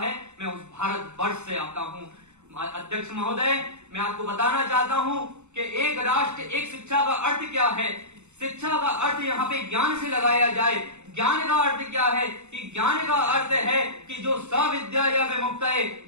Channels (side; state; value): left; late; 0.83 ms